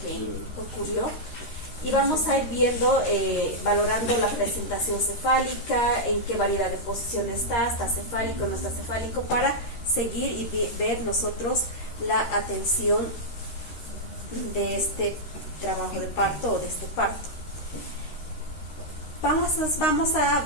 ocurrió. Y vamos a ir viendo, valorando la presentación cefálica, en qué variedad de posición está cefálico, no está cefálico, para seguir y ver nosotros la atención de este trabajo de parto o de este parto.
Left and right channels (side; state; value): right; late; 13 ms